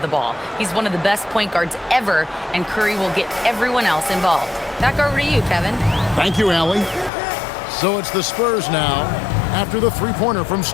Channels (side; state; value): right; drops out; at 7.1 s